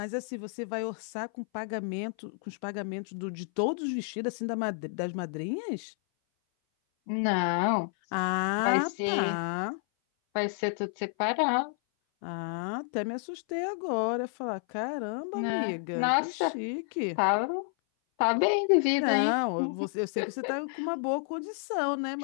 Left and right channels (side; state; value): right; silent; 57 dB below the other